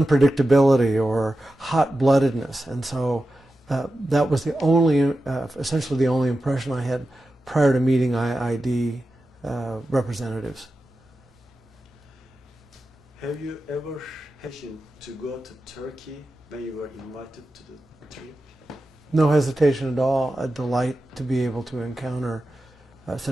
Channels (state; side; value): normal; both; correlation 0.92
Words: or hot-bloodedness. And so that was the only, essentially the only impression I had prior to meeting IID representatives. Have you ever hesitated to go to Turkey when you were invited to the trip? No hesitation at all. A delight to be able to encounter